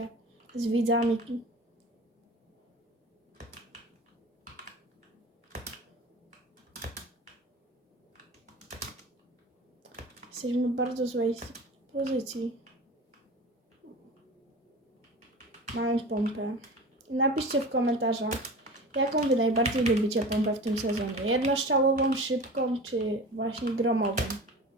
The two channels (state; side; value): normal; both; correlation 0.35